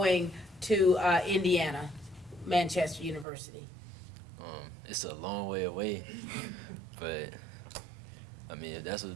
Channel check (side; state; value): left; drops out; at 3.2 s